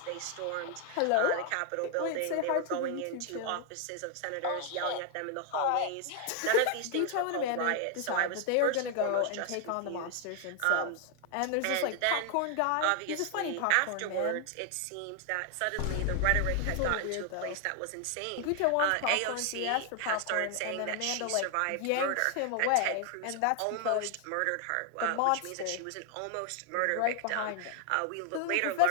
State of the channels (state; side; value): different; both; correlation 0.00